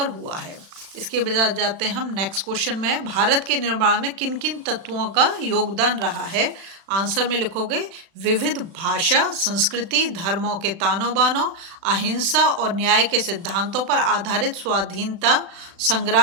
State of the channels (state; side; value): late; left; 36 ms